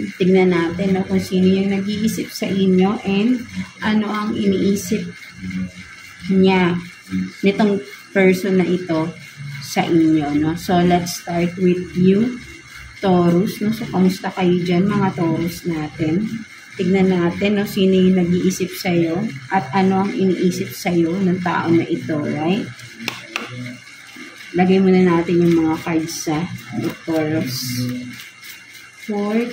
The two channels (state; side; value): identical; both; correlation 1.00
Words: Tignan natin no, kung sino yung nag-iisip sa inyo and ano ang iniisip niya nitong person na ito sa inyo. No? So, let's start with you, Taurus. No? So, kamusta kayo dyan, mga Taurus natin? Tignan natin no, sino yung nag-iisip sa'yo at ano ang iniisip sa'yo ng tao na ito, right? Lagay muna natin yung mga cards sa Taurus. For